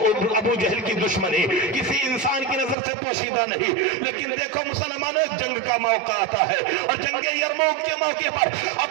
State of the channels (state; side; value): drops out; left; at 2.8 s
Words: ابو جہل کی دشمنی کسی انسان کی نظر سے پوشیدہ نہیں, لیکن دیکھو مسلمانوں, جنگ کا موقع آتا ہے اور جنگ یرموک کے موقع پر